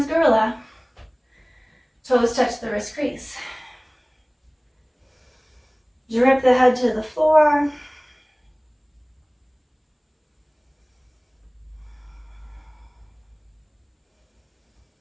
gorilla. Toes touch the wrist crease. Drip the head to the floor.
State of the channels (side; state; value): both; identical; correlation 1.00